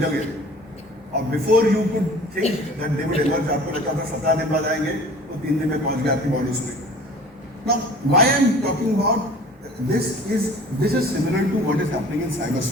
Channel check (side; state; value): both; normal; correlation 0.45